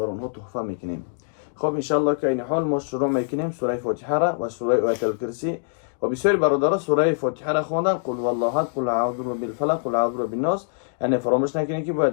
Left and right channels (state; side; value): silent; right; digital silence